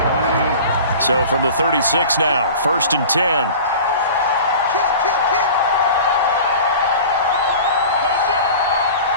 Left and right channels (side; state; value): both; inverted; correlation -0.39